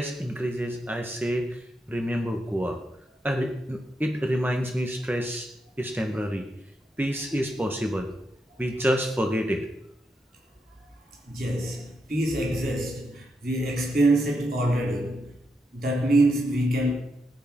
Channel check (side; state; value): both; normal; correlation 0.83